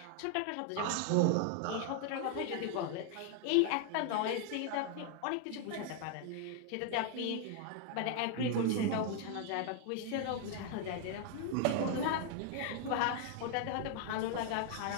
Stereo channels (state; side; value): different; both; correlation 0.00